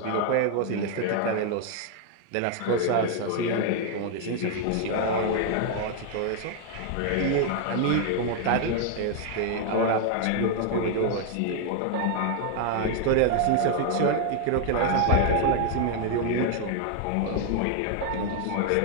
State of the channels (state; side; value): different; both; correlation 0.00